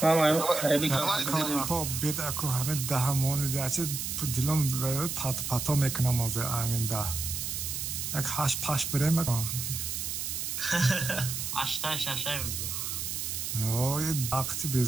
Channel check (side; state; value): right; noise; hiss, 3 dB below the sound